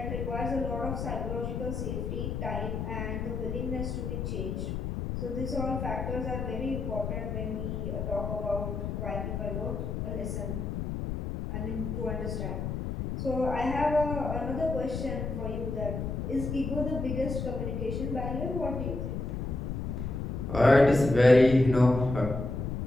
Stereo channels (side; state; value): left; noise; rumble, 3 dB below the sound